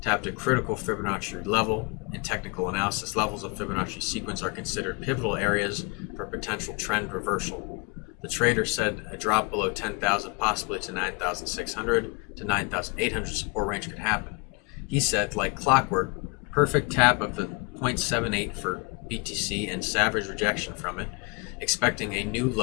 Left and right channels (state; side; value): quieter; right; 29.9 dB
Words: a critical Fibonacci level. In technical analysis, levels of Fibonacci sequence are considered pivotal areas for potential trend reversal. The trader said a drop below 10,000, possibly to 9,600 to 9,800 support range could happen. He said, like clockwork, perfect tap of the 0.78 for BTC and savage rejection from it, expecting a new